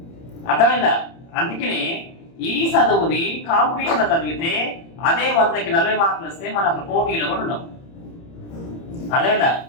అర్థమైందా? అందుకనే ఈ చదువుని కాంపిటీషన్ చదివితే అదే 100కి 40 మార్కులు వస్తే మన అసలు పోటీలో కూడా ఉండవు. అదేనా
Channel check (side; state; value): right; late; 30 ms